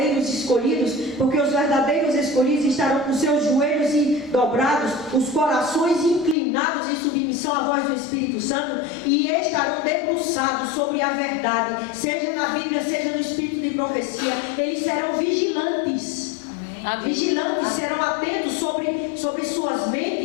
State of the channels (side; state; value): right; drops out; at 6.4 s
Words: escolhidos, porque os verdadeiros escolhidos estarão com seus joelhos dobrados, os corações inclinados em submissão à voz do Espírito Santo, e estarão debruçados sobre a verdade, seja na Bíblia, seja no Espírito de profecia. Eles serão vigilantes. Vigilantes, serão atentos sobre suas